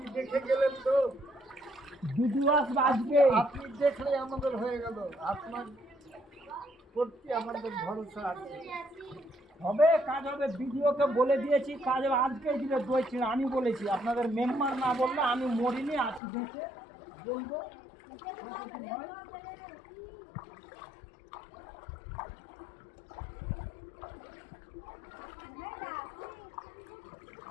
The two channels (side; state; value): right; drops out; at 16.2 s